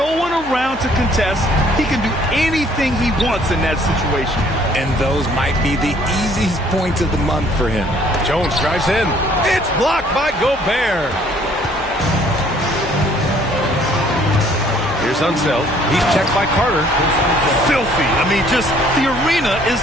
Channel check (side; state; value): left; noise; hum, 17 dB below the sound